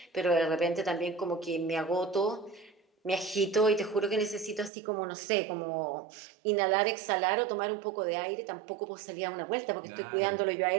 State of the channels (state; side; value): drops out; left; at 4.7 s